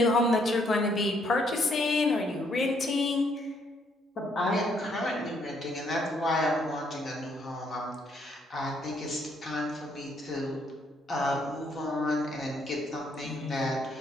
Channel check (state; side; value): normal; both; correlation 0.70